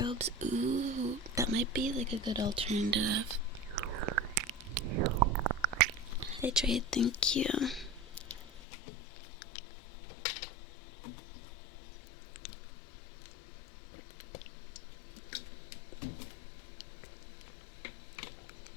ooh, that might be like a good alternative. Hydrate, thank you.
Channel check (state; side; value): drops out; right; at 8.6 s